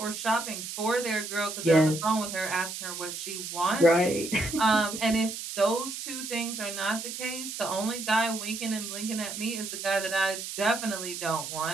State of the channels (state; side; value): noise; right; hiss, 7 dB below the sound